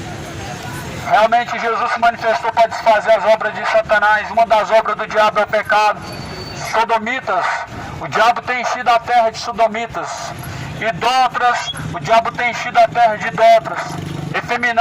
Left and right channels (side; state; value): both; identical; correlation 1.00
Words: Realmente Jesus se manifestou para desfazer as obras de Satanás. Uma das obras do diabo é o pecado. Sodomitas, o diabo tem enchido a terra de sodomitas. Idólatras, o diabo tem enchido a terra de idólatras.